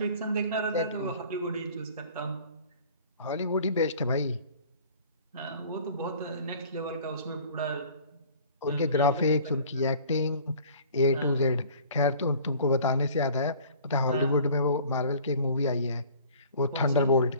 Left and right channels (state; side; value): inverted; both; correlation -0.49